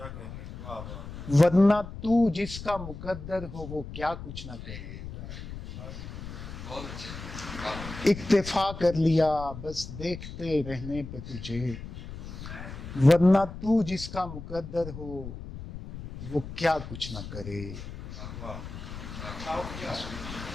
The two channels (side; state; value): left; noise; rumble, 10 dB below the sound